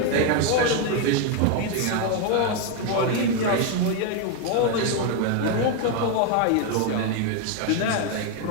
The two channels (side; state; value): both; different; correlation 0.01